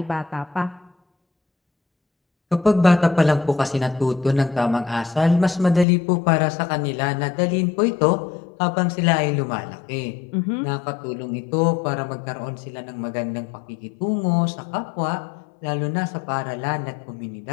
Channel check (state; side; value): drops out; right; at 5.9 s